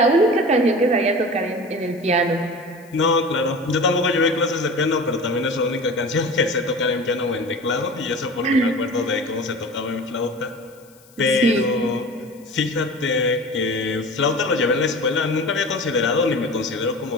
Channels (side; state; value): left; noise; hiss, 28 dB below the sound